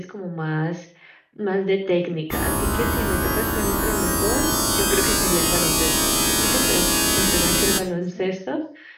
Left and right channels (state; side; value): identical; both; correlation 1.00